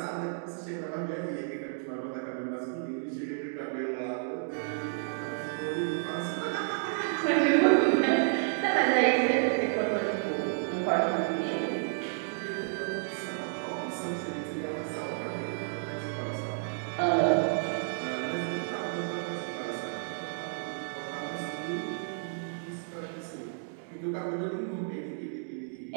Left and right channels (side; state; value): left; silent; digital silence